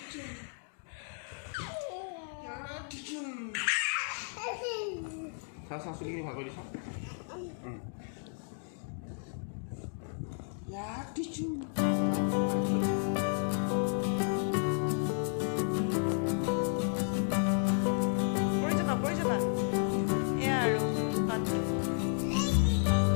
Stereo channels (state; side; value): silent; right; 56 dB below the other